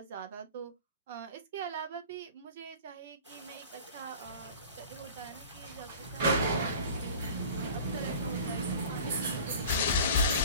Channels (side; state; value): both; inverted; correlation -0.42